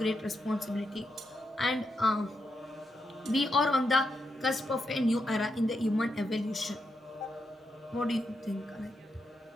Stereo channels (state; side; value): normal; both; correlation 0.84